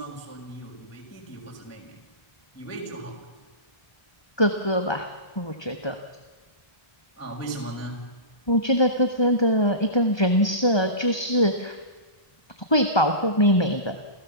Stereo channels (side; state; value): right; late; 1.2 ms